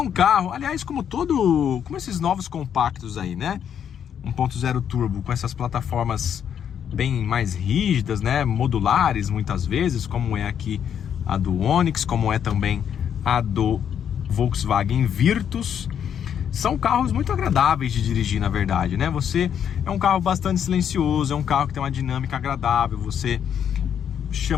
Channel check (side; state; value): right; quieter; 8.7 dB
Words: carro, aliás, como esses novos compactos aí, né? 1.0 turbo com essas plataformas bem mais rígidas, né? Modulares muitas vezes, como é aqui a do Onix, como é também a do Volkswagen Virtus. São carros muito agradáveis de dirigir, na verdade, né? É um carro bastante silencioso, é um carro que tem uma dinâmica agradável, você